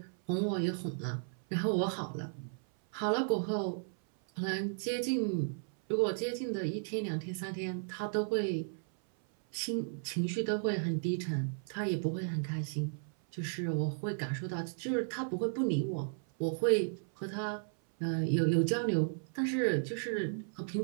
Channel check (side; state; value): left; silent; 55 dB below the other